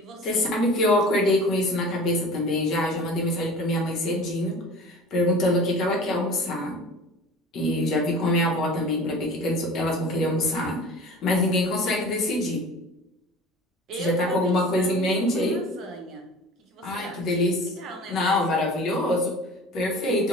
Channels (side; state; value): both; normal; correlation 0.40